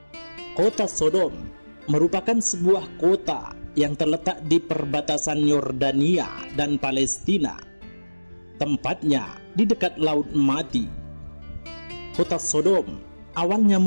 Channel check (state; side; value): inverted; both; correlation -1.00